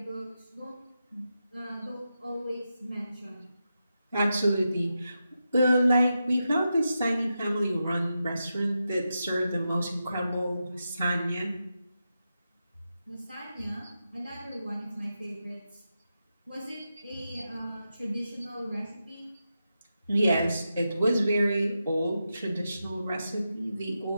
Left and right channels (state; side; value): inverted; both; correlation -0.88